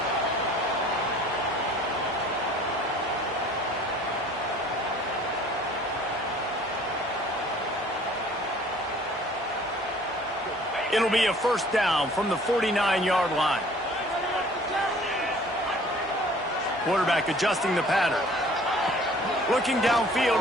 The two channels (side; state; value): both; normal; correlation 0.52